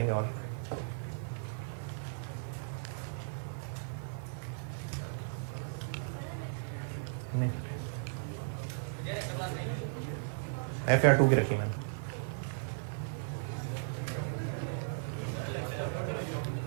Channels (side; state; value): left; silent; 54 dB below the other